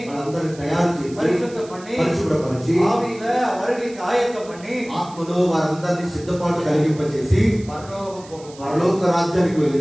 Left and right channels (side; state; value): right; noise; hiss, 21 dB below the sound